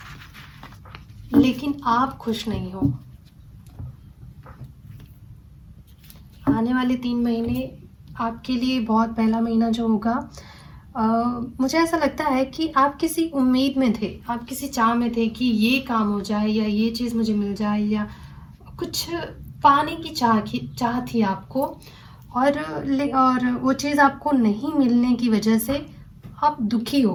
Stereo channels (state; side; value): identical; both; correlation 1.00